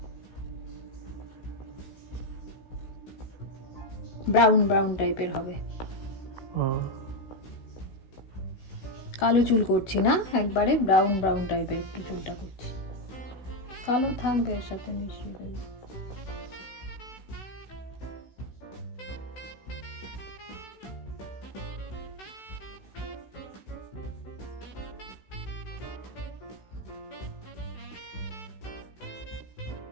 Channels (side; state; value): right; late; 16 ms